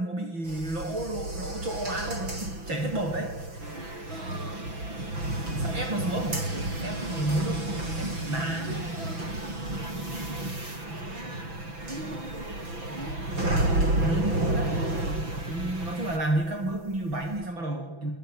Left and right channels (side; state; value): left; late; 6.0 ms